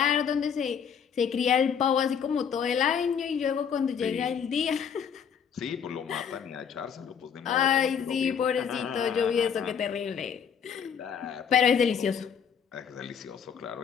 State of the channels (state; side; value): quieter; right; 7.4 dB